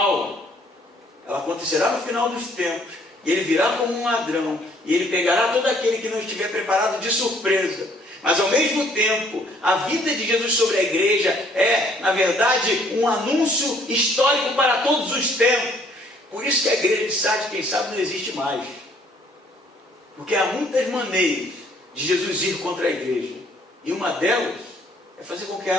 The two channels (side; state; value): both; normal; correlation 0.62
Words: Ela acontecerá no final dos tempos, e ele virá como um ladrão, e ele pegará todo aquele que não estiver preparado de surpresa. Mas ao mesmo tempo, a vida de Jesus sobre a igreja é, na verdade, um anúncio histórico para todos os tempos. Por isso que a igreja de Sardes, quem sabe, não existe mais. Porque há muitas maneiras de Jesus ir contra a igreja. E uma delas é fazer com que